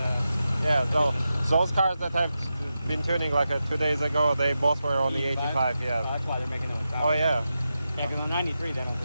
Yeah. So those cars that I've been tuning like 2 days ago, they both were on E85. Yeah. Oh, that's why they're making them. Oh yeah. Yeah, because on 93 they don't.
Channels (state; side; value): inverted; both; correlation -0.90